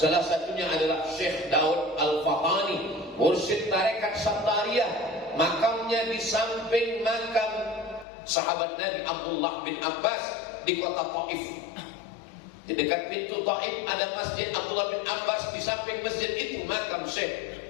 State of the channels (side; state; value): right; drops out; at 8.1 s